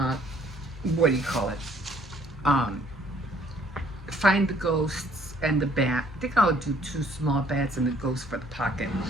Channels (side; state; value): both; normal; correlation 0.61